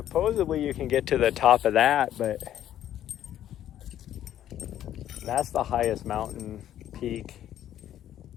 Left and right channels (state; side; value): quieter; right; 11.5 dB